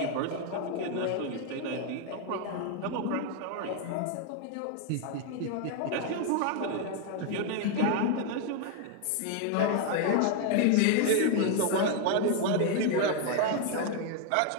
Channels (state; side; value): different; both; correlation 0.00